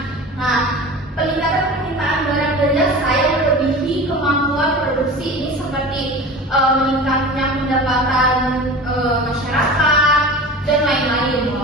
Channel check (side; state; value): both; normal; correlation 0.34